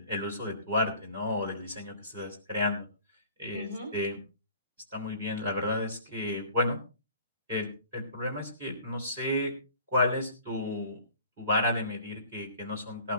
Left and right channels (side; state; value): both; inverted; correlation -0.48